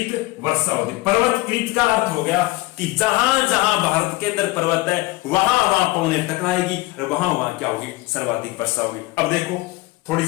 वर्षा होती है। पर्वत कृत का अर्थ हो गया कि जहां जहां भारत के अंदर पर्वत है वहां वहां पवनें टकराएगी और वहां वहां क्या होगी, सर्वाधिक वर्षा होगी। अब देखो थोड़ी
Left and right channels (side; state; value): right; quieter; 20.8 dB